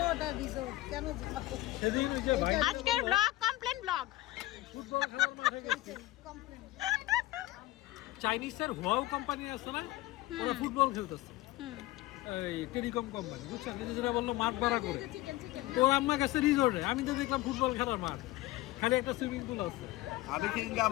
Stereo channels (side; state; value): right; quieter; 17.6 dB